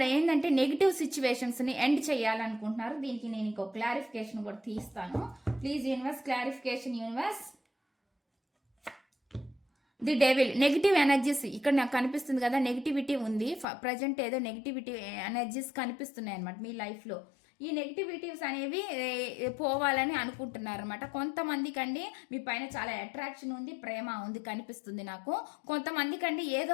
ఏంటంటే నెగిటివ్ సిచ్యువేషన్స్ని ఎండ్ చేయాలనుకుంటున్నారు. దీనికి నేను ఇంకో క్లారిఫికేషన్ కూడా తీస్తాను. Please universe clarification universe. The devil, negative energies ఇక్కడ నాకు కనిపిస్తుంది కదా, నెగిటివిటీ ఉంది ప్రజెంట్, ఏదో నెగిటివిటీ ఎనర్జీస్ కనిపిస్తున్నాయి అనమాట మీ లైఫ్లో. ఈ నెగిటివిటీస్ అనేవి పోవాలని అనుకుంటున్నారు అనమాట. కొంతమందికి అండి మీ పైన చాలా అట్రాక్షన్ ఉంది, ప్రేమ ఉంది కనిపిస్తుంది నాకు. కొంతమందికి అండి ఏదో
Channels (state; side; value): drops out; right; at 13.7 s